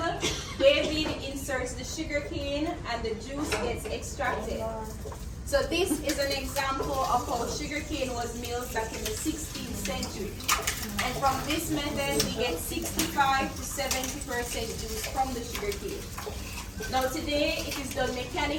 David inserts the sugarcane and the juice gets extracted. So this is an example of how sugarcane was milled back in the 16th century. And from this method, we get 65 to 70% juice from the sugarcane. Now today, it is done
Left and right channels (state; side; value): identical; both; correlation 1.00